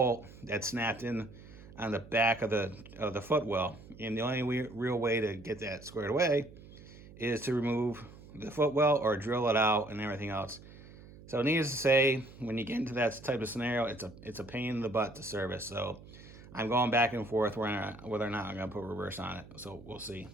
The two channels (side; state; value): right; noise; hum, 19 dB below the sound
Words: that snapped in on the back of the footwell. And the only real way to get that squared away is to remove the footwell or drill it out and everything else. So needless to say, when you get into that type of scenario, it's a pain in the butt to service. So I'm going back and forth whether or not I'm going to put reverse on it. So we'll see.